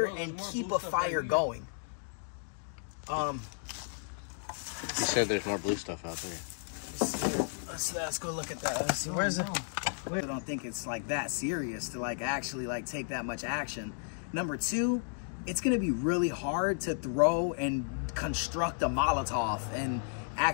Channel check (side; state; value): right; silent; digital silence